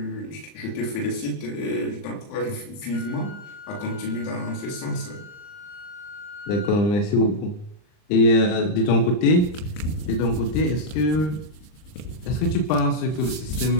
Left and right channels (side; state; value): right; late; 39 ms